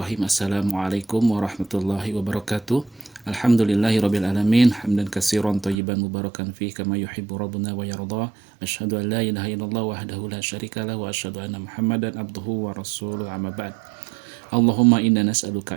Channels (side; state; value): left; drops out; at 5.8 s